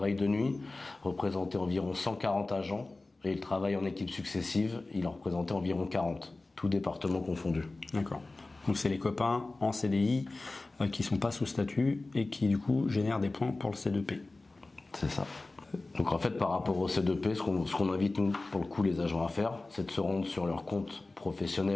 de nuit représentait environ 140 agents, et le travail en équipe successive il en représentait environ 40, tout département confondu. D'accord. Donc c'est les copains en CDI qui ne sont pas sous statut et qui du coup génèrent des points pour le C2P. C'est ça. Donc en fait par rapport au C2P, ce qu'on invite nous pour le coup les agents à faire, c'est de se rendre sur leur compte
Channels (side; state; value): right; quieter; 3.2 dB